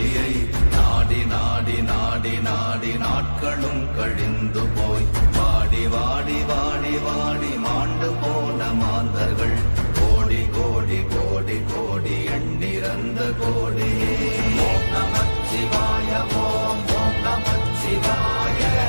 நாடி நாடி நாடி நாடி நாட்களும் கழிந்து போய் வாடி வாடி வாடி வாடி மாண்டு போன மாந்தர்கள் கோடி கோடி கோடி கோடி எண்ணிறந்த கோடியே. ஓம் நமச்சிவாய ஓம் ஓம் நமச்சிவாய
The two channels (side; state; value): both; inverted; correlation -1.00